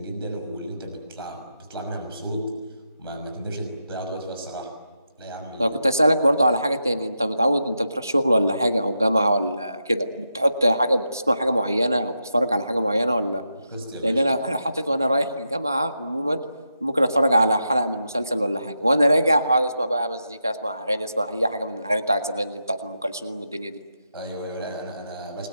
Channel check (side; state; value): both; inverted; correlation -0.85